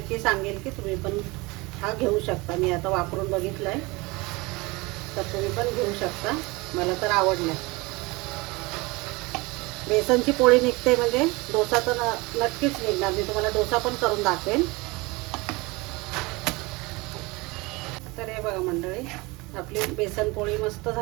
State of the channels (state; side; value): quieter; left; 24.2 dB